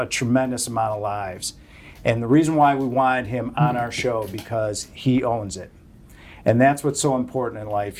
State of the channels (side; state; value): both; identical; correlation 1.00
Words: tremendous amount of lives. And the reason why we wanted him on our show, because he owns it. And that's what's so important in life.